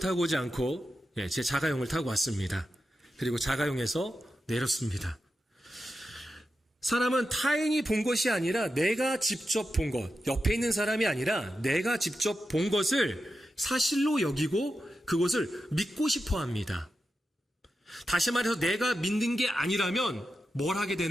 오지 않고 제 자가용을 타고 왔습니다. 그리고 자가용에서 내렸습니다. 사람은 타인이 본 것이 아니라 내가 직접 본 것, 옆에 있는 사람이 아니라 내가 직접 본 것을 사실로 여기고 그것을 믿고 싶어 합니다. 다시 말해서 내가 믿는 게 아니라면 뭘 하게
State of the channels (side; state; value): both; normal; correlation 0.90